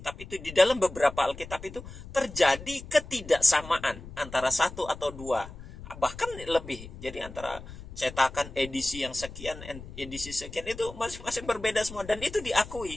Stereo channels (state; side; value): noise; left; rumble, 14 dB below the sound